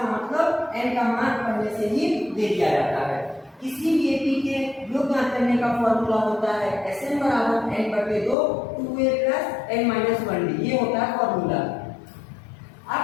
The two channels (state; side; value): drops out; right; at 8.3 s